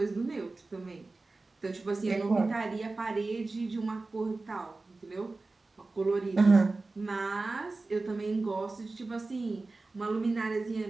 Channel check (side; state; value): left; quieter; 3.4 dB